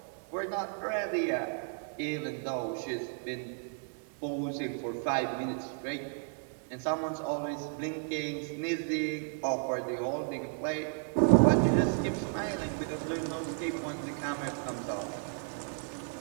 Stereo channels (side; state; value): left; silent; 56 dB below the other